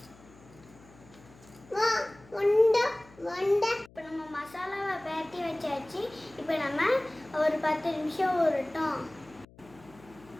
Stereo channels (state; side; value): noise; left; hum, 24 dB below the sound